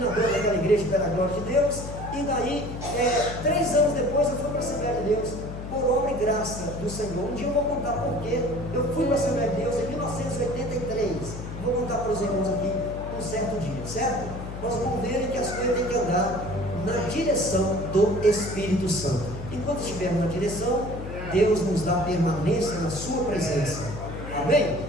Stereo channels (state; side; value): noise; left; hum, 9 dB below the sound